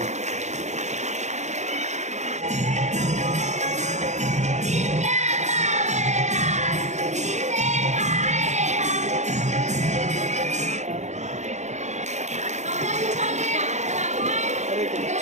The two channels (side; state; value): left; late; 0.34 ms